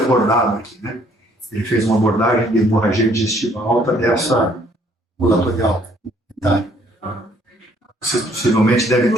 aqui, né? Ele fez uma abordagem de hemorragia digestiva alta dessa ambulatorial. Tá? Você possivelmente deve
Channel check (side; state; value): both; normal; correlation 0.63